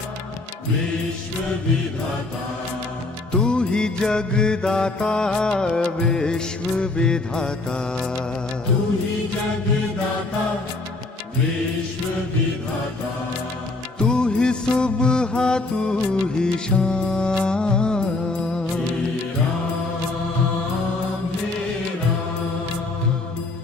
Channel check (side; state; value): right; quieter; 3.1 dB